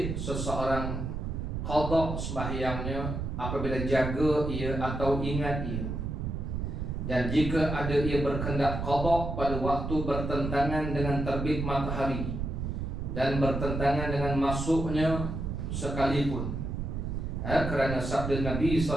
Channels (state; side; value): noise; right; rumble, 3 dB below the sound